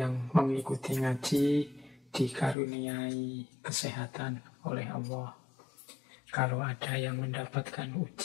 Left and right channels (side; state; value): right; drops out; at 2.6 s